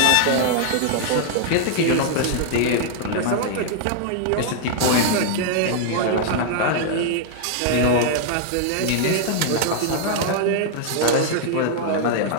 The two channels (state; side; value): different; both; correlation -0.01